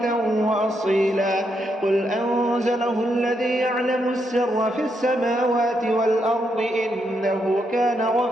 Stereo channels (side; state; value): both; normal; correlation 0.80